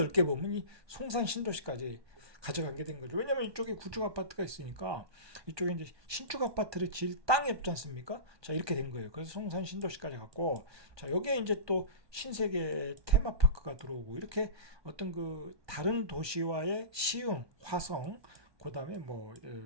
보면 이 송산 신도시까지 가져가게 된 거죠. 왜냐면 이쪽에 구축 아파트가 있으니까 이쪽에 이제 신축 아파트를 지을 땅이 없지 않습니까? 자, 이렇게 된 거예요. 그래서 송산 신도시까지 갔고, 자, 여기에 이제 또 신세계 테마파크가 들어오고, 이렇게 어떤 그 다른 도시와의 시흥, 화성, 그 다음에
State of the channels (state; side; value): late; left; 1.2 ms